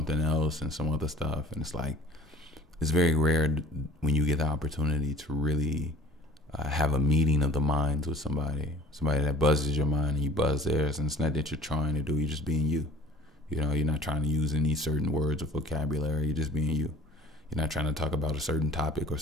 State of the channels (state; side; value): normal; both; correlation 0.46